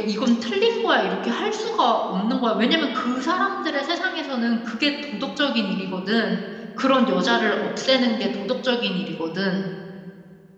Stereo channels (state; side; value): identical; both; correlation 1.00